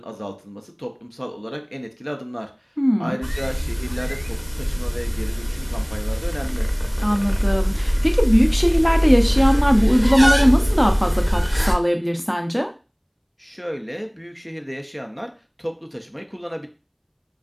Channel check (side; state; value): both; identical; correlation 1.00